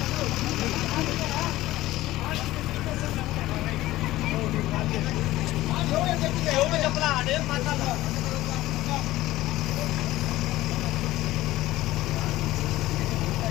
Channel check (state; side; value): quieter; right; 16.6 dB